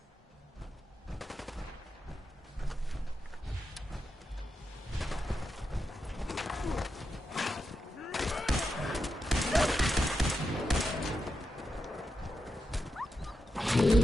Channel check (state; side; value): normal; both; correlation 0.87